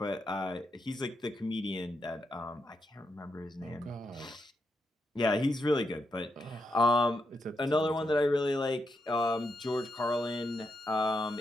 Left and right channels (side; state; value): both; normal; correlation 0.82